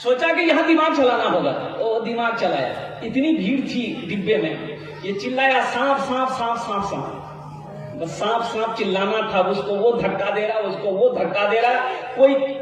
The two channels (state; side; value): identical; both; correlation 1.00